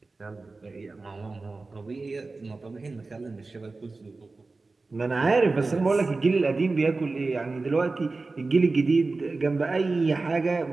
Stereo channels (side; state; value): left; quieter; 3.6 dB